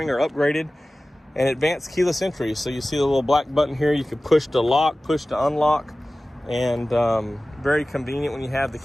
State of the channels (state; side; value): normal; both; correlation 0.97